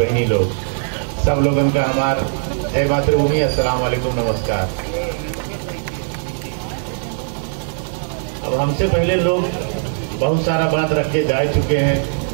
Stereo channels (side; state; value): left; silent; digital silence